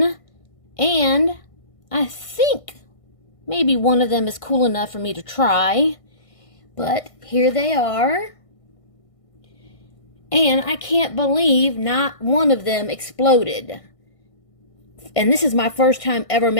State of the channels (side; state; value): right; late; 1.5 ms